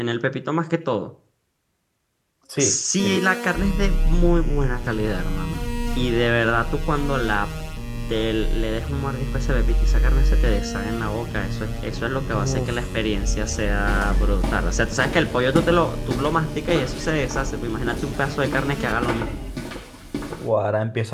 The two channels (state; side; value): identical; both; correlation 1.00